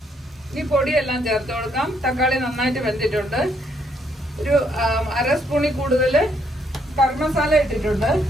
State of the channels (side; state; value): both; normal; correlation 0.71